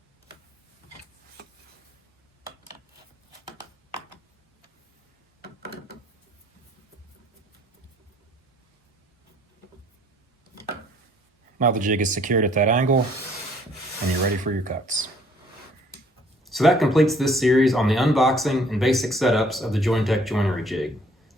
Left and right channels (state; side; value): normal; both; correlation 0.59